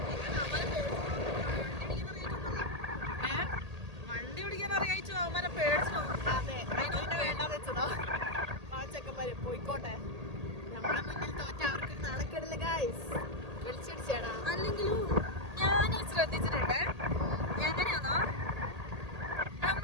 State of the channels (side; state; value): left; late; 1.8 ms